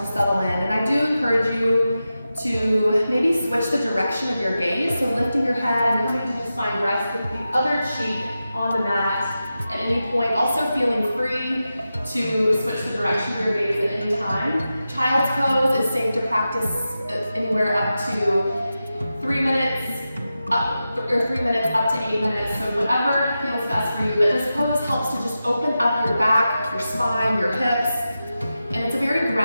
settle in. And I do encourage you to maybe switch the direction of your gaze, so lifting your head and coming to just find rest with the other cheek on the mat at any point. Also feeling free to switch the direction of your gaze at any time. Child's pose is safe to practice anywhere up to 3 minutes, or 3 minutes up to 8 minutes, so whatever feels best for you. But this pose helps to just open up your back, your spine, your hips. And it's a very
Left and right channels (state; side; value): inverted; both; correlation -0.92